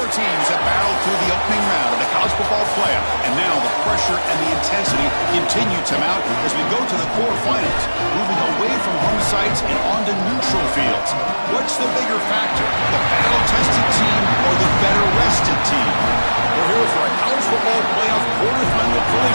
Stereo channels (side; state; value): both; inverted; correlation -1.00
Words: teams have battled through the opening round of the college football playoff, and now the pressure and the intensity continue to mount as we go to the quarterfinals, moving away from home sites and onto neutral fields. What's the bigger factor, the battle-tested team or the better-rested team? We're here for a college football playoff quarterfinal